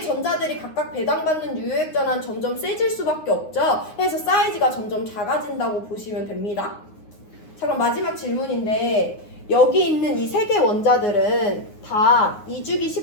전자들이 각각 배당받는 유효 핵전화는 점점 세질 수밖에 없죠. 그래서 사이즈가 점점 작아진다고 보시면 됩니다. 자, 그럼 마지막 질문인데 여기 있는 이 3개 원자들은 다 이주기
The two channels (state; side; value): late; right; 9.6 ms